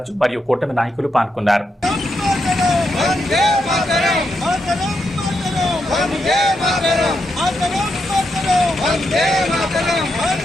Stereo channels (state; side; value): normal; both; correlation 0.82